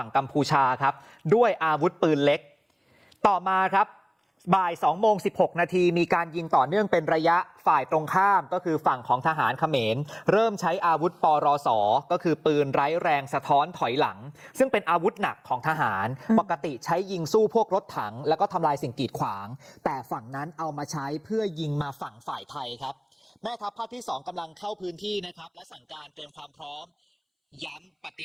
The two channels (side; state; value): both; identical; correlation 1.00